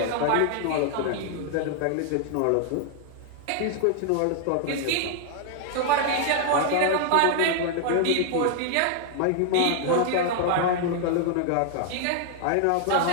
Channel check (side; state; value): both; different; correlation 0.00